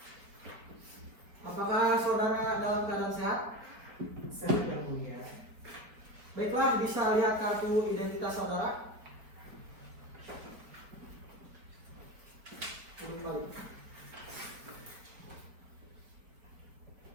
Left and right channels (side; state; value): left; late; 4.6 ms